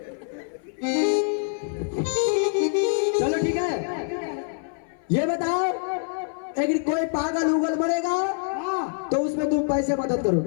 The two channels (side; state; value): right; silent; 59 dB below the other